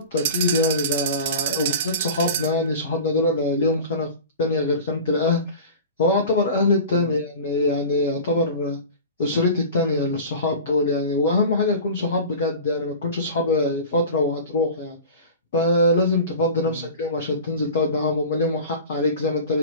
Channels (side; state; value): both; inverted; correlation -0.35